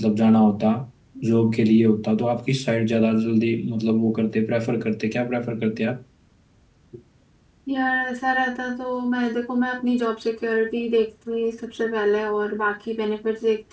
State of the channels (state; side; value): identical; both; correlation 1.00